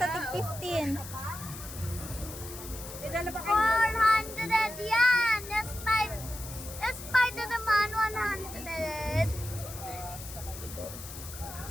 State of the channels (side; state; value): left; noise; hiss, 12 dB below the sound